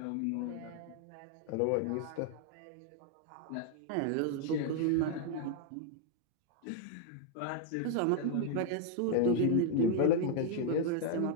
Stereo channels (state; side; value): different; both; correlation 0.00